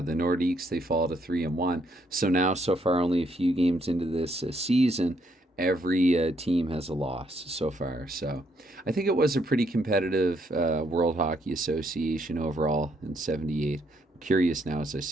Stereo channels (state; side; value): normal; both; correlation 0.72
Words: the Nordiques, they fall to 3-1. So now, so far, only a few games into this season, every team has a loss so far. So I think it was a pretty competitive World Hockey Association overall in '78. I'm curious now, as I